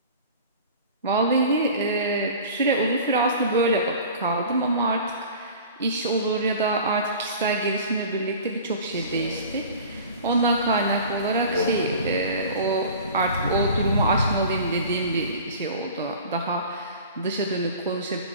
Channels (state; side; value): inverted; both; correlation -0.41